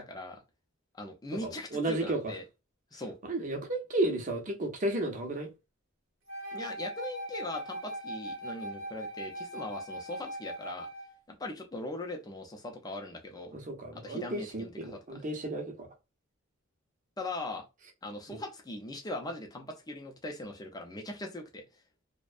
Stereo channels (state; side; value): normal; both; correlation 0.18